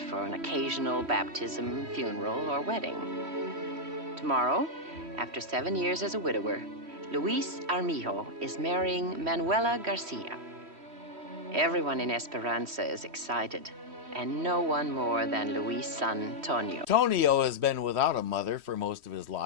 for an occasional baptism, funeral, or wedding. Tomorrow, after 7 years as a widower, Luis Armijo is marrying Manuela Garcia. Everyone in Esperanza is excited, and no one more than Luis' son, Tonio. Tonio has been without a mother for most of his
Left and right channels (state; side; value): late; left; 3.1 ms